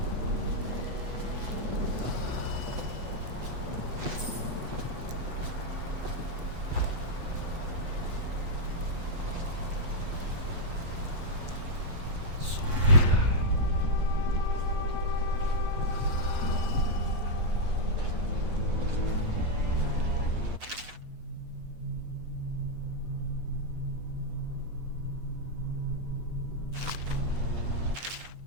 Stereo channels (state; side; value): late; left; 8.2 ms